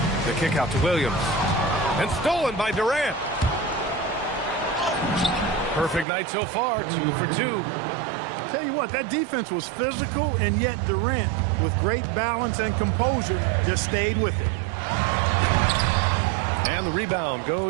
The kick out to Williams. And stolen by Durant. Perfect night so far, 2 for 2. Tell you what, that defense was physical, and yet Durant, with great balance and composure, just stayed with it. And the rebound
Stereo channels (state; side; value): drops out; left; at 6.1 s